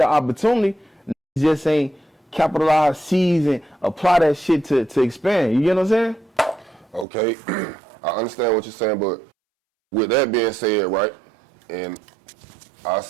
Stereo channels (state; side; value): drops out; left; at 7.1 s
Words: opportunity, just ain't capitalize, seize, and apply that shit to expand. You get what I'm saying? Okay, I understand what you're saying, but with that being said, right, and I